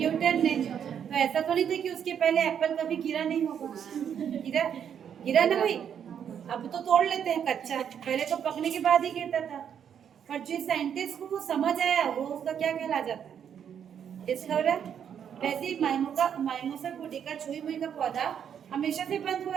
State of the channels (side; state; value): left; quieter; 8.4 dB